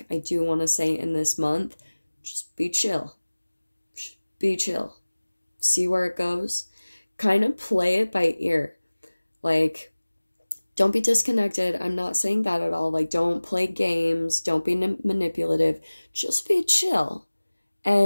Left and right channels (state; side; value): inverted; both; correlation -1.00